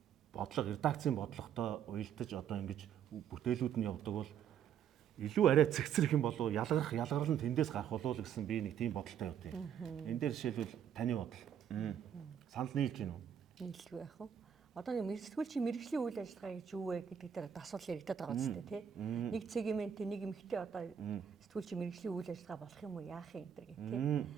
Редакцийн бодлоготой уялдаж одоо ингэж бүтээлүүд нь явдаг бол илүү арай цэгцрэх юм болов ялгарл нь тэндээс гарах болов гэсэн би нэг тийм бодолтой явд юм. Энэ дээр жишээлбэл таны бодол. Санал нийлж гин үү? Нийлгүй яах вэ? Одоо нэг сэтгүүлчийн мэрэгжлийн үйл ажиллагаа гэж юу вэ гэдэг дээр асуулт яригадаад байгаа үстэй тий. Нэг сегмент нэг эмэгтэй одоо сэтгүүлчийн мэрэгжлийн үйл ажиллагаа болох юм уу яах юм энэ гэх тий.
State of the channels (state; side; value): quieter; left; 8.7 dB